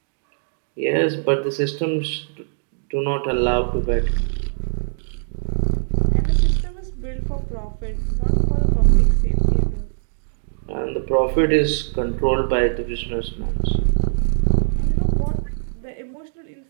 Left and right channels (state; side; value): silent; left; digital silence